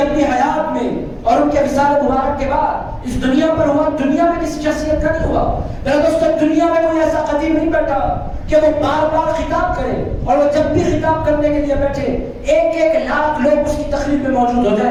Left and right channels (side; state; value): both; identical; correlation 1.00